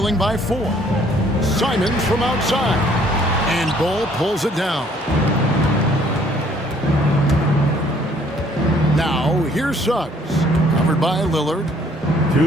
by 4. Simons from outside. And Bull pulls it down. Now, here's Suggs. Covered by Lillard. 2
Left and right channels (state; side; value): normal; both; correlation 0.61